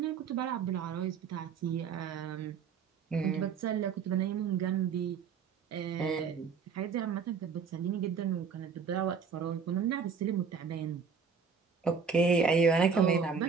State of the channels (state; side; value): quieter; left; 5.9 dB